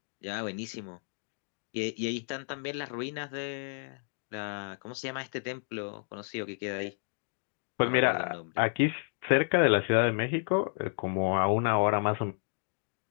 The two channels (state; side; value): silent; right; digital silence